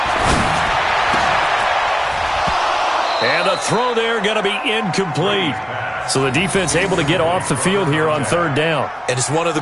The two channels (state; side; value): identical; both; correlation 1.00